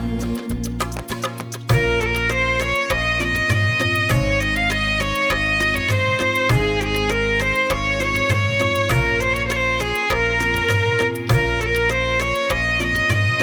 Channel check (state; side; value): identical; both; correlation 1.00